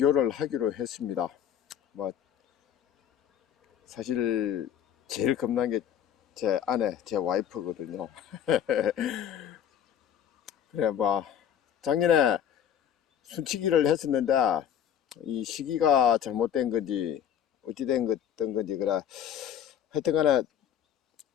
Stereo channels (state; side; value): quieter; right; 9.4 dB